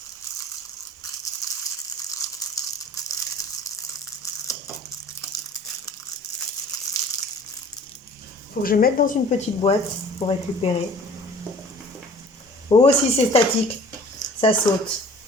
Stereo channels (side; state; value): both; normal; correlation 0.48